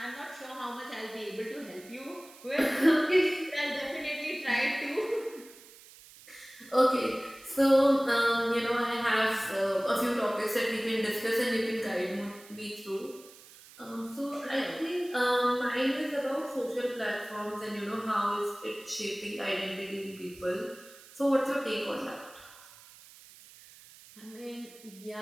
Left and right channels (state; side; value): noise; right; hiss, 21 dB below the sound